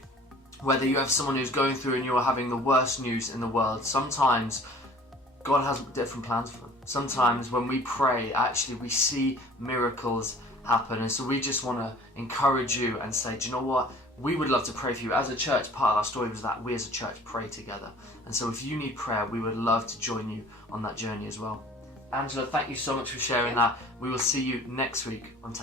Whether you have someone who's going through and you are having the worst news in the world, sometimes God has different plans for them. Sometimes when we pray, actually we see miracles happen. And so we just want to encourage you and say, do you know what? We would love to pray for you. As a church, part of our story was that we as a church pray together. And so if you need prayer, we would love to join you on that journey as well. Angela, thank you so much for sharing that. We will see you next week on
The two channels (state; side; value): normal; both; correlation 0.48